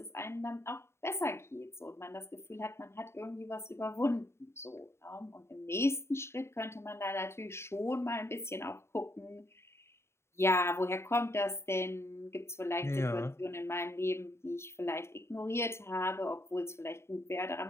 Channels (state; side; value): late; right; 0.13 ms